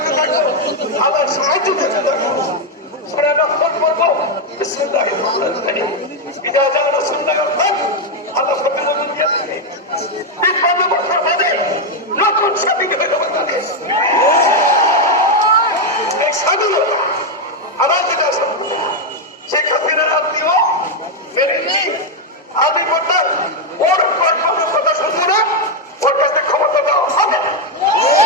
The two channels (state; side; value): normal; both; correlation 0.03